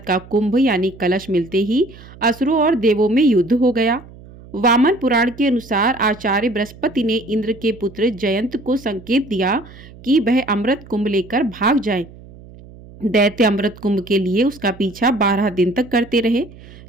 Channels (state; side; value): noise; right; hum, 20 dB below the sound